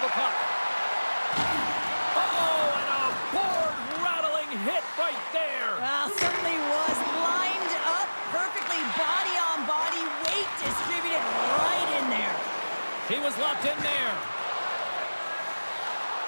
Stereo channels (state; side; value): inverted; both; correlation -1.00